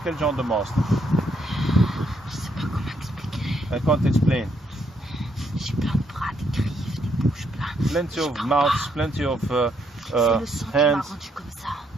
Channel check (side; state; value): both; normal; correlation 0.73